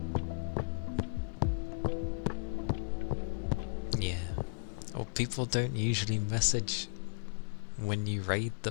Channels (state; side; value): silent; right; 54 dB below the other